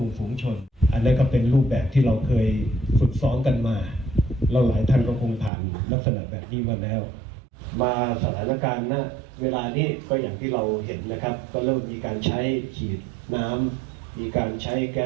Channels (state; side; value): drops out; left; at 5.5 s